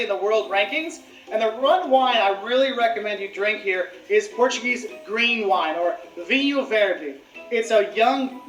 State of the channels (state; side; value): identical; both; correlation 1.00